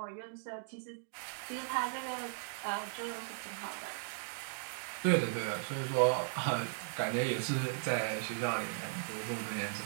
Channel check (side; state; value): left; silent; digital silence